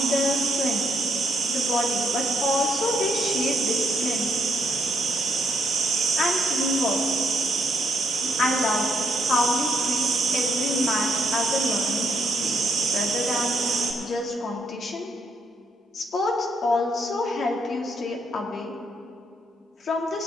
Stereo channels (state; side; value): normal; both; correlation 0.74